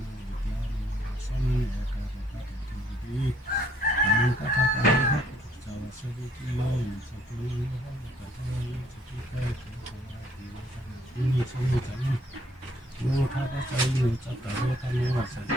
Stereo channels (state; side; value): normal; both; correlation 0.64